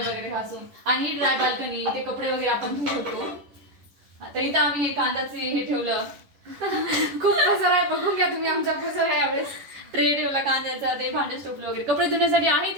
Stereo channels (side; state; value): left; late; 10 ms